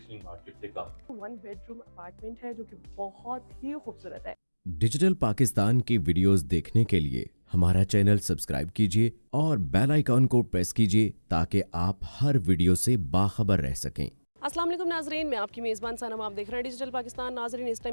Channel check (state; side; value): inverted; both; correlation -1.00